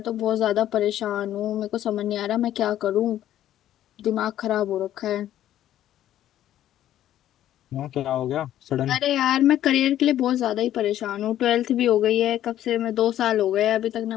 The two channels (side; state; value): right; quieter; 12.2 dB